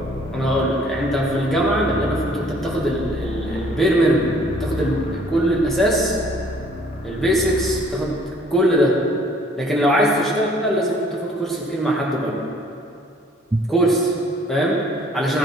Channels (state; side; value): normal; both; correlation 0.58